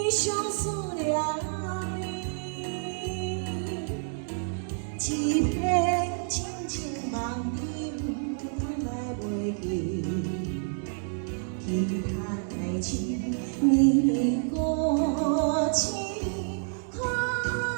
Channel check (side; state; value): left; silent; digital silence